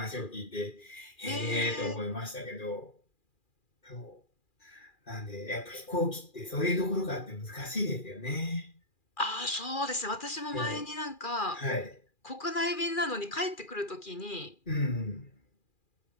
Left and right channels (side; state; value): right; late; 2.4 ms